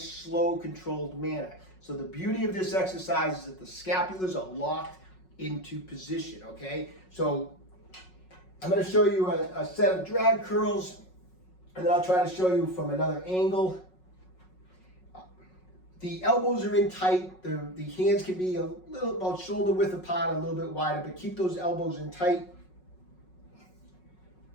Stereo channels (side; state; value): right; late; 5.4 ms